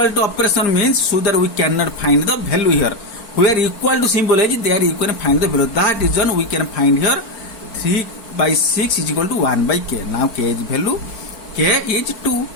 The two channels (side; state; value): right; late; 4.5 ms